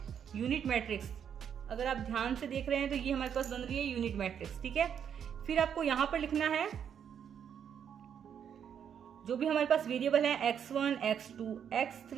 यूनिट मैट्रिक्स। अगर आप ध्यान से देख रहे हैं तो ये हमारे पास बन रही है यूनिट मैट्रिक्स, ठीक है। फिर आपको यहां पर लिखना है जो भी हमारे पास वेरिएबल है x1, x2,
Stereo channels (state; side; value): quieter; left; 8.3 dB